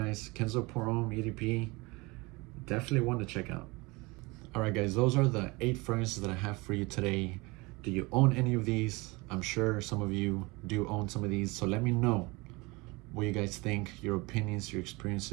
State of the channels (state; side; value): quieter; left; 24.7 dB